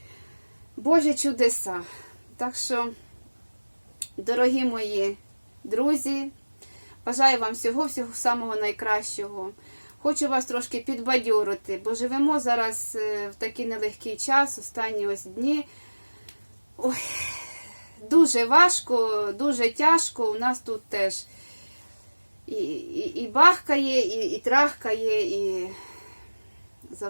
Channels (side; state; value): both; inverted; correlation -1.00